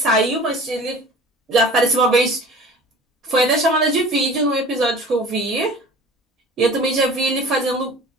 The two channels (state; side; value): normal; both; correlation 0.43